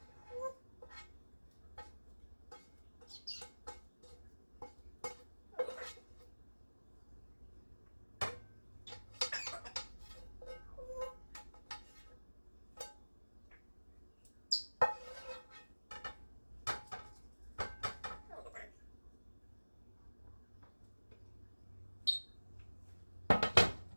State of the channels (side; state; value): both; inverted; correlation -1.00